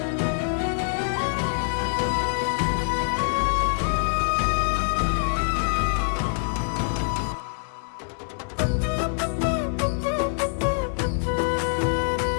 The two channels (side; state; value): right; silent; 61 dB below the other